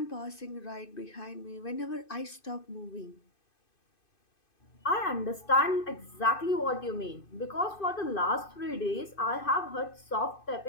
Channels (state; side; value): late; right; 2.5 ms